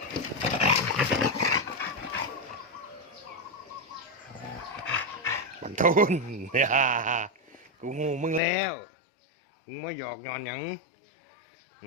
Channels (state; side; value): drops out; right; at 8.4 s